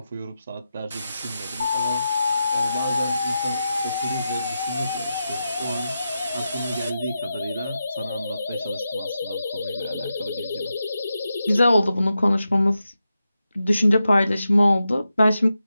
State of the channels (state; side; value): inverted; both; correlation -0.89